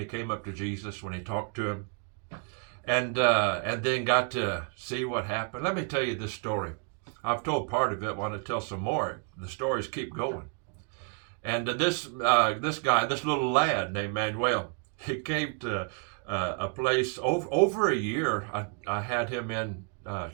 came up to Jesus, when he talked to him, and then got to see what happened? Let me tell you this story. I've told part of it. I want to tell some more. The stories keep going. And this guy, this little lad named Manuel, he came to a place over a year. I had him in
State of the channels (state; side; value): quieter; left; 36.5 dB